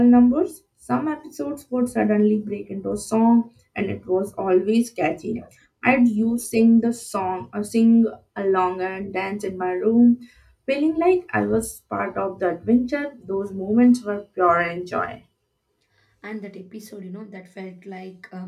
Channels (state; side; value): identical; both; correlation 1.00